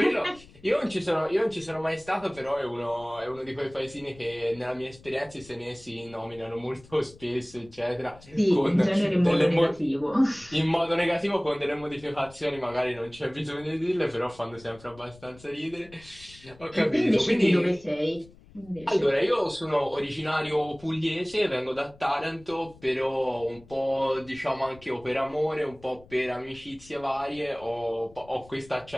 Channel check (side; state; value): left; noise; rumble, 23 dB below the sound